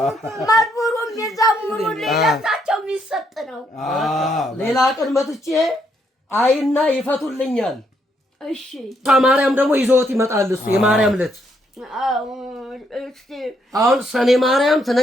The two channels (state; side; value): normal; both; correlation 0.74